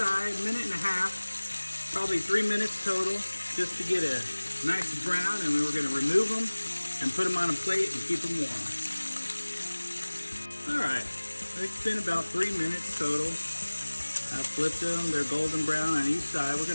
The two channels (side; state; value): both; inverted; correlation -1.00